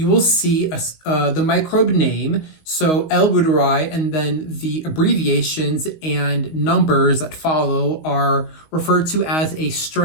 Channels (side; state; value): right; late; 19 ms